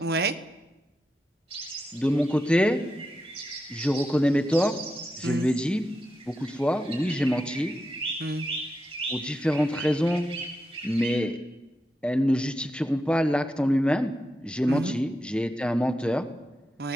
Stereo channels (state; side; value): normal; both; correlation 0.87